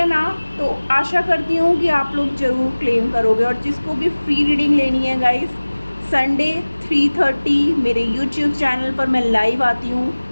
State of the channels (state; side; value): inverted; both; correlation -1.00